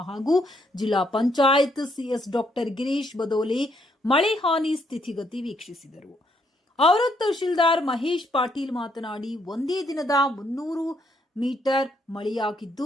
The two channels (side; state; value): both; normal; correlation 0.73